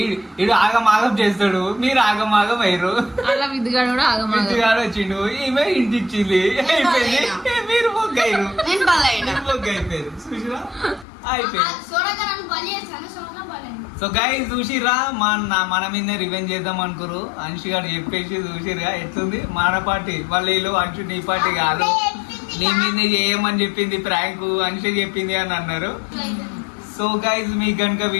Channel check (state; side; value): drops out; right; at 11.1 s